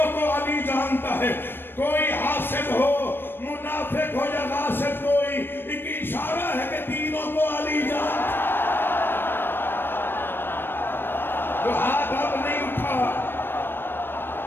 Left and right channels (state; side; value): late; right; 0.099 ms